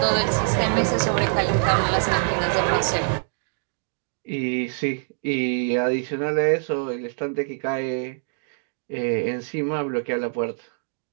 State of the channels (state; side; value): silent; left; digital silence